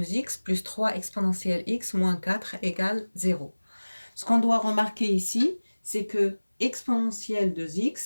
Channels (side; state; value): both; inverted; correlation -1.00